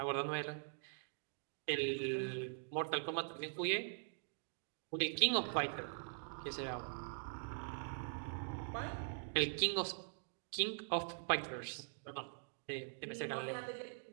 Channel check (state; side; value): silent; left; digital silence